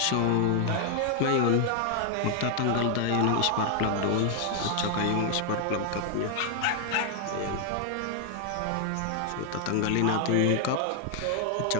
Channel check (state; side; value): different; both; correlation 0.00